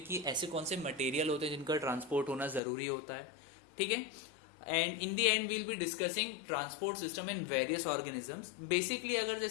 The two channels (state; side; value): drops out; right; at 2.6 s